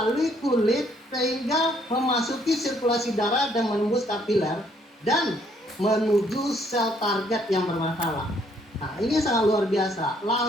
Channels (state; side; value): normal; both; correlation 0.67